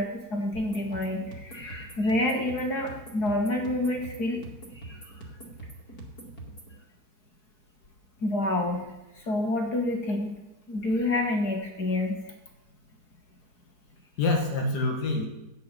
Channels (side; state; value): right; late; 4.8 ms